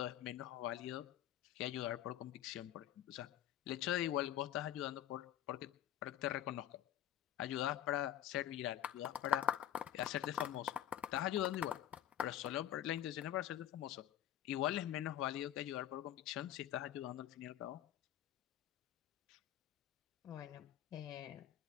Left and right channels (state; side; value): quieter; right; 11.5 dB